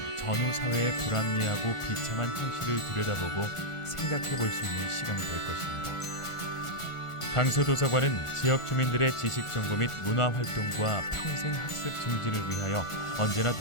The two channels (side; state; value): right; late; 1.4 ms